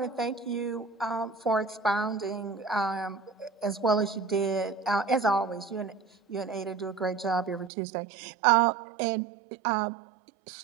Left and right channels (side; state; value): left; drops out; at 7.7 s